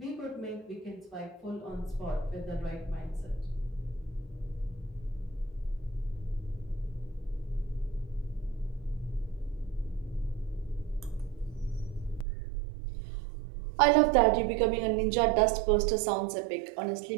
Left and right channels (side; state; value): left; drops out; at 12.2 s